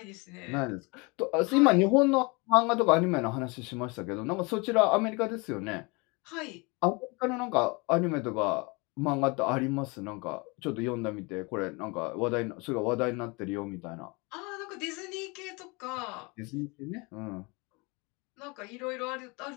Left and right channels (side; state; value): right; quieter; 27.9 dB